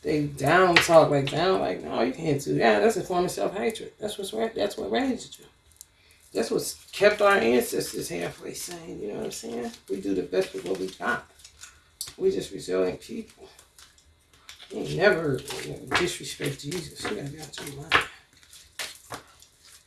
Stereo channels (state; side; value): identical; both; correlation 1.00